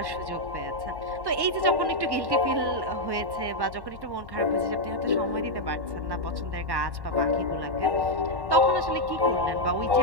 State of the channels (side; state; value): left; late; 1.1 ms